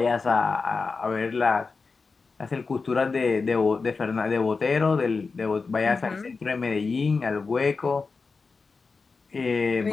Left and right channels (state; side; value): quieter; right; 4.5 dB